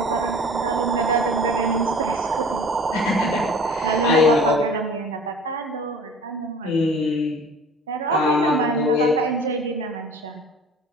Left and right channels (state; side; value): normal; both; correlation 0.45